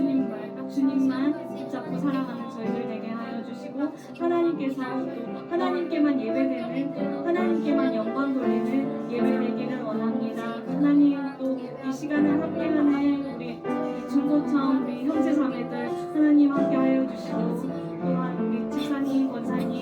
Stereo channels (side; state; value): both; identical; correlation 1.00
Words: 주님만 붙잡고 살아가는 저희들 되게 하여 주시고 하나님께서 또 하나님께만 예배되는 하나님께만 영광 돌리는 예배 되기를 원합니다. 하나님 또 이 시간을 함께하는 우리 중고청 우리 형제 자매들 하나님 함께하여 주시고 또한 우리 집사님